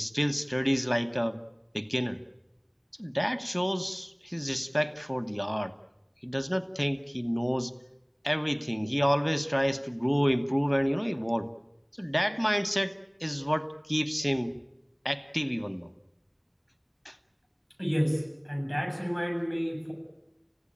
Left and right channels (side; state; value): both; identical; correlation 1.00